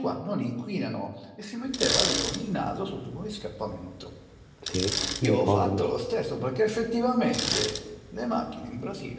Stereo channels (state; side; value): identical; both; correlation 1.00